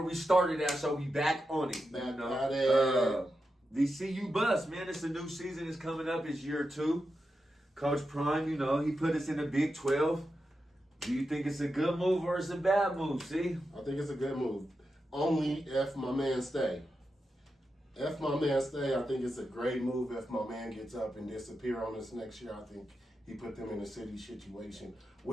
we started at, so we back on it. Back at it. The CU bus, man, it's a new season is coming up. It's year 2. Coach Prime, he put us in the Big 12. Do you think it's a good move or it's a bad move, see? I think it's a good move. Only if my man stay. If my man stay, I think it's a great move. If my man gets up and disappear on us next year, I think he put them in a city situation,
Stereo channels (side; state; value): both; normal; correlation 0.88